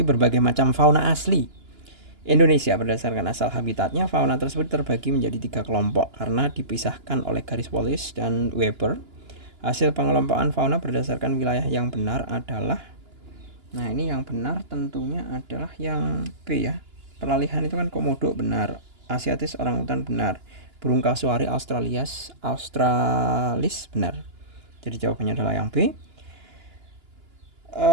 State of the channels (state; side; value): late; left; 2.9 ms